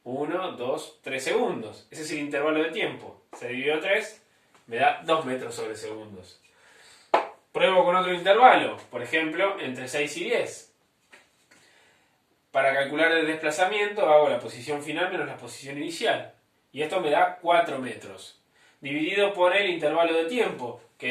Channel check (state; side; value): identical; both; correlation 1.00